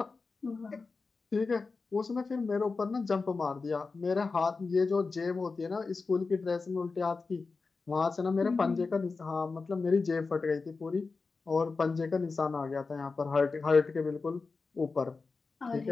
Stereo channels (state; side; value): quieter; right; 4.3 dB